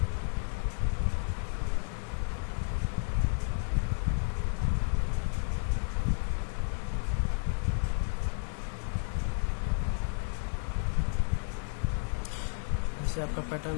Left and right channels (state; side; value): silent; right; 56 dB below the other